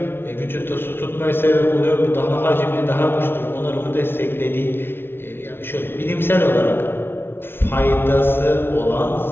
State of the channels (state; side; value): late; right; 0.11 ms